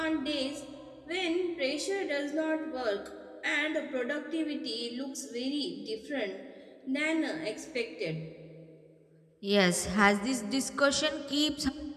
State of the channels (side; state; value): both; identical; correlation 1.00